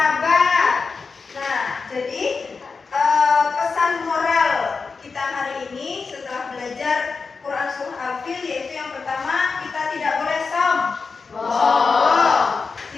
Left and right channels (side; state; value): right; quieter; 4.7 dB